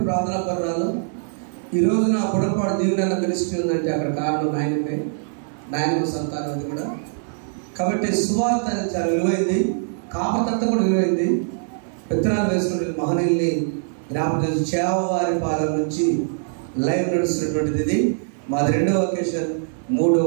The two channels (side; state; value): left; silent; 60 dB below the other